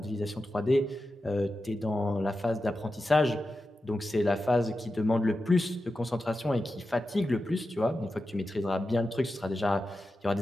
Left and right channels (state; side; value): normal; both; correlation 0.91